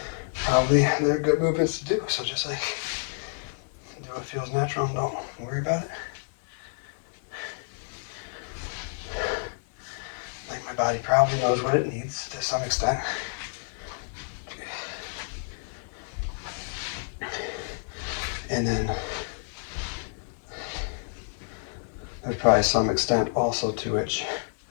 probably they're good movements to do. So just like, do what feels natural and don't worry about it. Like, my body probably knows what it needs to some extent. And then there's probably some extent also to which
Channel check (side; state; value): right; silent; 59 dB below the other